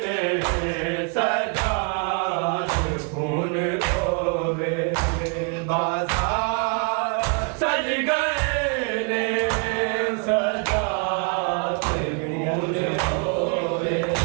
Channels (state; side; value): quieter; left; 38.9 dB